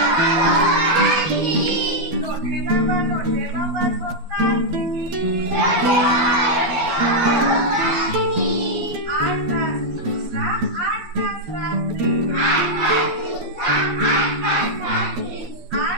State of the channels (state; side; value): late; left; 12 ms